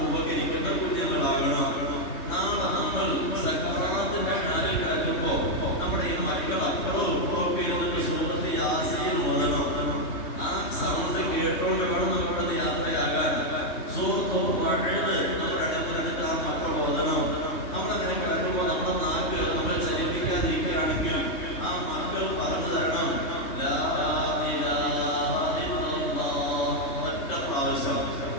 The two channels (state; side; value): late; right; 3.2 ms